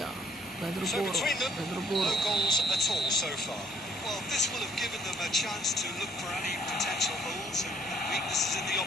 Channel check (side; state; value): both; normal; correlation 0.63